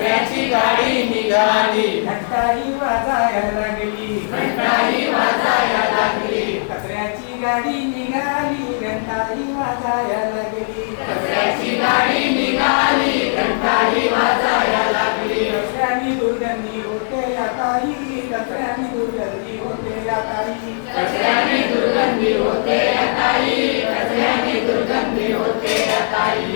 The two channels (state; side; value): silent; right; digital silence